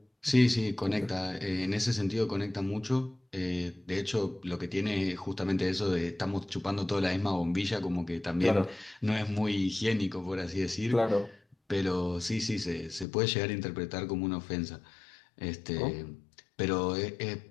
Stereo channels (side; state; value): right; drops out; at 13.1 s